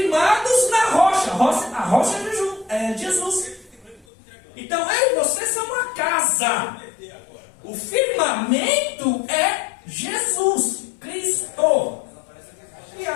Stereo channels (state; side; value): drops out; right; at 4.0 s